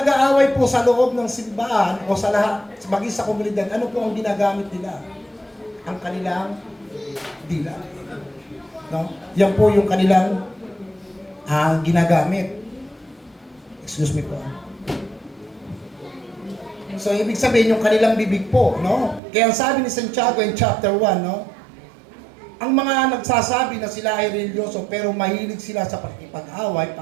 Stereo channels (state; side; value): drops out; left; at 19.2 s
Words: po sa loob ng simbahan o sa lahat, maging sa komunidad, ano po ang ginagamit nila? Ang kanilang dila. No? Yan po yung kanilang ginagamit. Excuse me po. So, ibig sabihin yung kanilang bibig po, no? Kaya ang sabi ni Santiago in chapter 1, no? Ang mga nagsasabi na sila ay religyoso pero mahilig sila sa pakikipag-away,